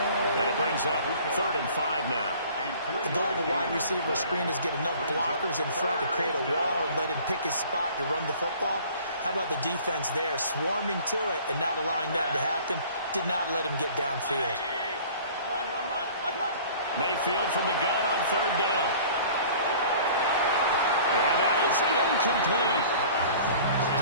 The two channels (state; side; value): inverted; both; correlation -0.48